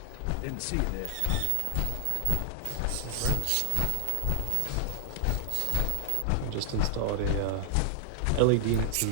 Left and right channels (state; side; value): different; both; correlation 0.00